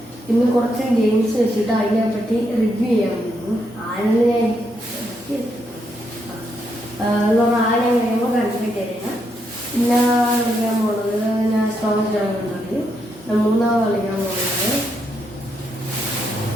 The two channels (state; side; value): normal; both; correlation 0.79